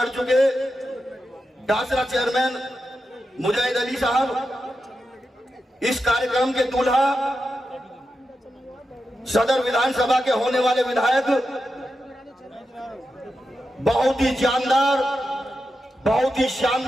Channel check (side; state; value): both; normal; correlation 0.89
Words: चुके डासरा चेयरमैन मुजाहिद अली साहब, इस कार्यक्रम के दूल्हा सदर विधानसभा के होने वाले विधायक, बहुत ही जानदार, बहुत ही